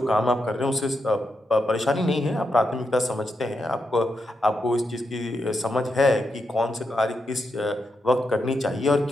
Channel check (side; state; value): both; normal; correlation 0.84